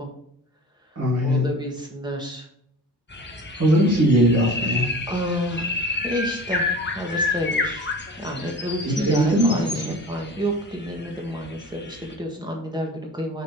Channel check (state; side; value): normal; both; correlation 0.39